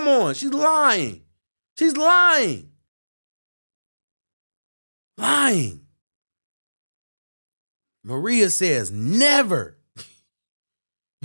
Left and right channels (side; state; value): both; inverted; correlation -1.00